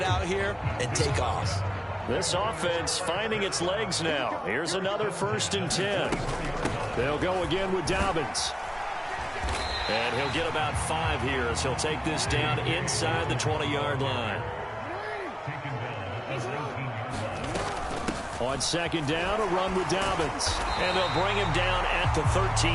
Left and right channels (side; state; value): both; identical; correlation 1.00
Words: out here and take off. This offense finding its legs now. Here's another 1st and 10. They'll go again with Dobbins. And he'll get about 5 here as he'll take this down inside the 20-yard line. On On second down, a run with Dobbins. And they'll bring him down at the